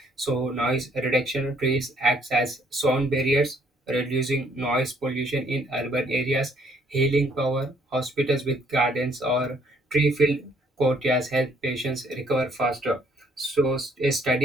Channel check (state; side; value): normal; both; correlation 0.65